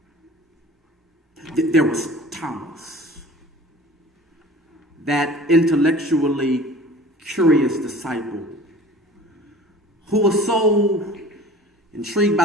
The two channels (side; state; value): both; normal; correlation 0.44